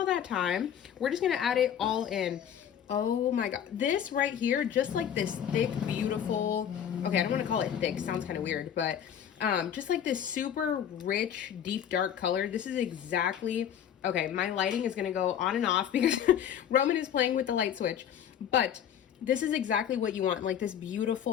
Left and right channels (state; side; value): quieter; right; 9.3 dB